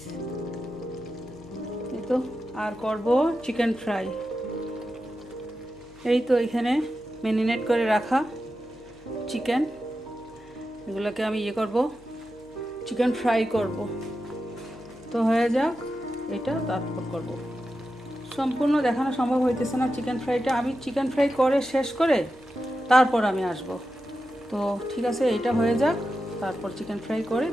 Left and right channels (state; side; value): noise; right; hum, 27 dB below the sound